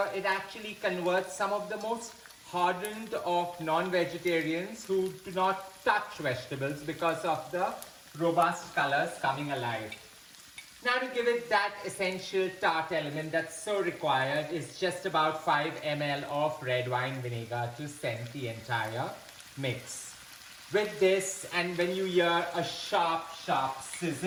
it actually converts some of the most hardened of non-vegetarians who do not touch vegetables because of the robust colors coming alive. Now to give it that essential tart element that's so required is just about 5 ml of red wine vinegar to scent the entire mix. With this, and when you hear a sharp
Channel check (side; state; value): both; identical; correlation 1.00